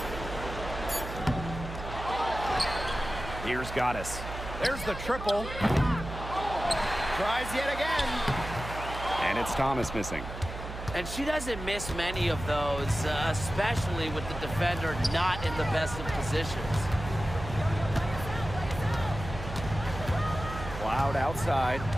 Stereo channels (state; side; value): noise; right; hum, 9 dB below the sound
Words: Here's Goddess. There's the triple. Tries yet again. And it's Thomas missing. And she doesn't miss many of those, especially with the defender not in the best of positions. Cloud outside.